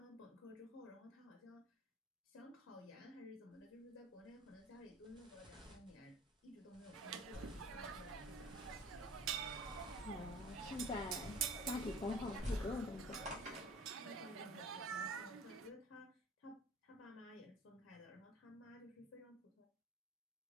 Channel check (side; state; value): both; normal; correlation 0.46